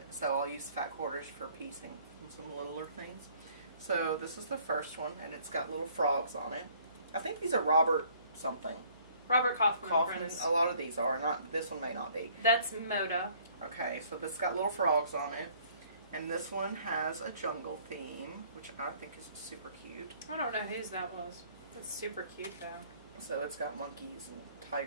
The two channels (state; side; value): inverted; both; correlation -0.59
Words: So I'll use fat quarters for piecing and some littler things. So this is the first one, and it's got little frogs on it. I think these are Robert something. Robert Kaufman. A lot of these are. Not this one may not be. That's Moda. Okay, so this got little frogs on it. And this one has a jungle theme, which I think is super cute. I don't know whose that was. That's super cute, though. So it's got monkeys and